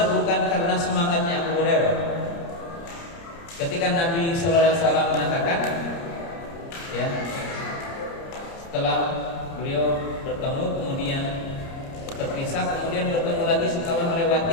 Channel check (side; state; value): right; late; 30 ms